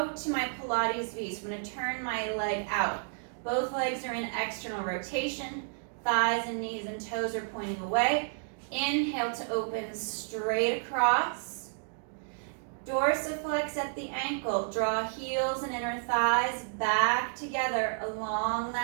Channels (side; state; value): left; silent; digital silence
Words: to my Pilates V. So I'm going to turn my leg out. Both legs are in external rotation. Thighs and knees and toes are pointing away. Inhale to open straight across. Dorsiflex at the ankle. Draw heels and inner thighs back together along